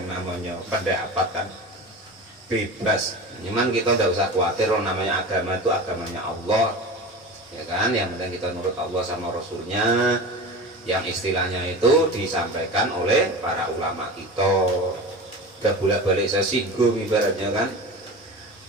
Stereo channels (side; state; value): both; normal; correlation 0.31